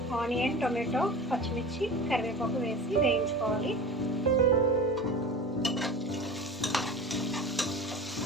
ఆనియన్, టొమాటో, పచ్చిమిర్చి, కరివేపాకు వేసి వేయించుకోవాలి.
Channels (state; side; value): normal; both; correlation 0.33